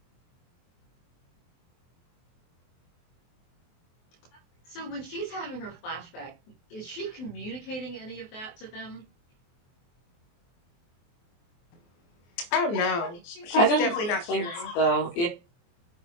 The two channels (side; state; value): right; late; 24 ms